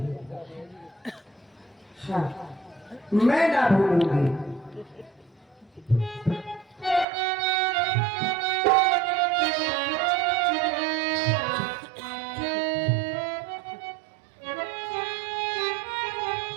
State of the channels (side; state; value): left; drops out; at 7.1 s